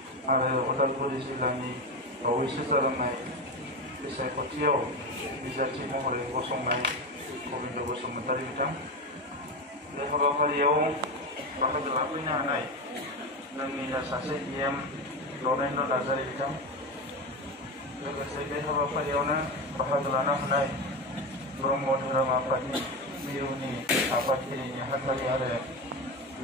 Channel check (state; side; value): normal; both; correlation 0.19